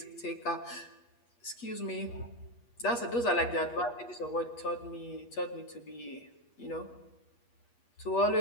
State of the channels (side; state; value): right; late; 8.4 ms